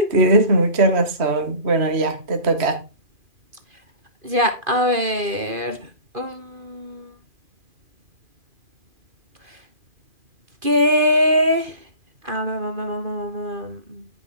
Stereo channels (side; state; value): left; late; 2.5 ms